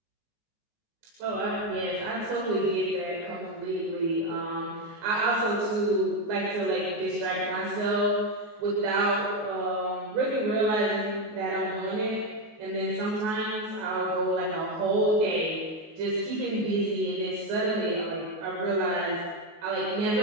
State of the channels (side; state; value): left; late; 19 ms